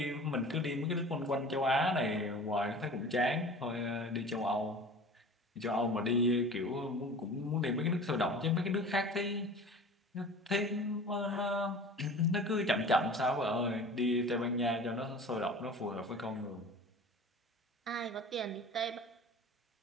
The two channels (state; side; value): normal; both; correlation 0.40